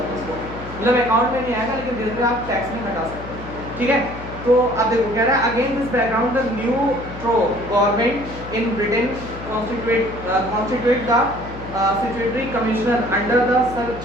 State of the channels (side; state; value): left; noise; hum, 13 dB below the sound